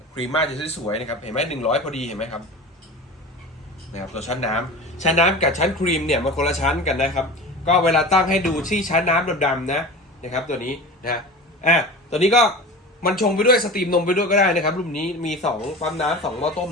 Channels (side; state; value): both; normal; correlation 0.34